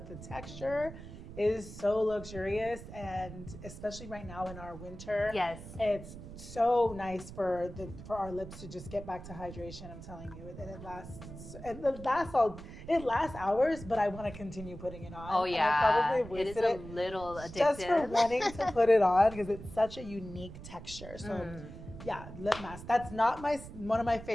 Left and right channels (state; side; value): noise; right; rumble, 13 dB below the sound